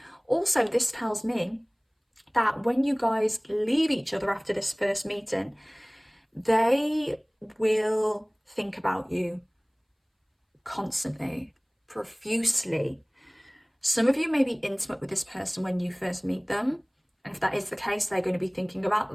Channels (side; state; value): both; identical; correlation 1.00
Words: Also, this tells me that when you guys leave each other after this first meeting, they will think about you constantly, profusely. Some of you may be intimate with this person when you first meet them. And if that is the case, they're going to be thinking